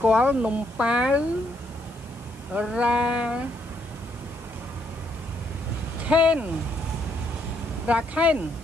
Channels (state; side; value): noise; left; hiss, 26 dB below the sound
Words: គាល់នំប៉ាវរ៉ាខេន